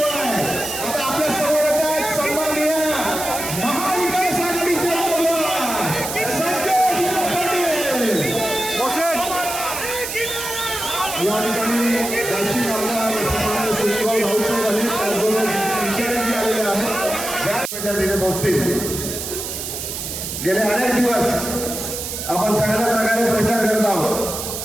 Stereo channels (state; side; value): noise; right; hiss, 6 dB below the sound